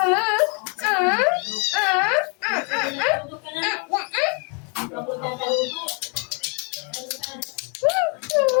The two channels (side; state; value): right; quieter; 36.0 dB